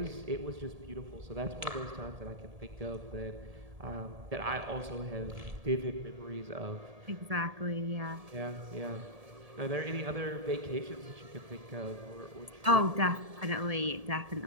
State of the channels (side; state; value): left; late; 1.7 ms